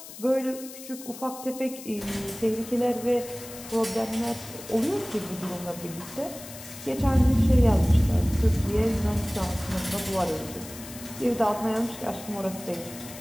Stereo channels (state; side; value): noise; left; hiss, 14 dB below the sound